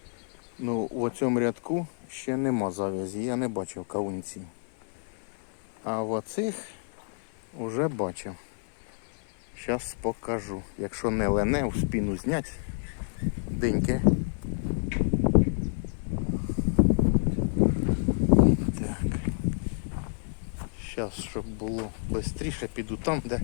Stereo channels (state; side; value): silent; right; 57 dB below the other